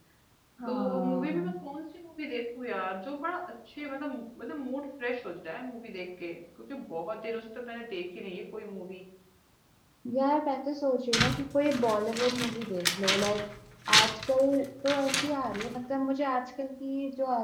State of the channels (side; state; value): both; identical; correlation 1.00